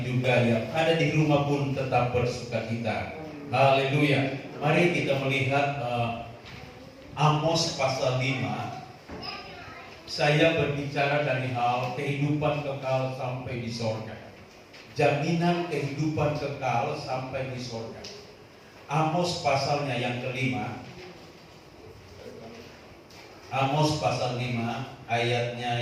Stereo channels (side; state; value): both; identical; correlation 1.00